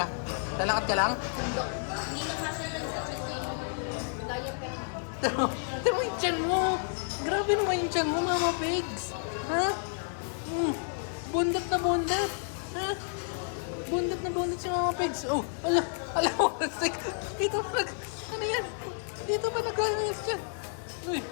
Lalakad ka lang? Tama yung tiyan mo. Grabe naman yung tiyan mo, Mama Pegs. Ha? Bundat na bundat. Ha? Bundat na bundat si Mama Pegs. Oh, ala mo. Dito pa ano yan? Dito pa nag-imas dyan. Uy.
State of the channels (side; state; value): right; silent; 57 dB below the other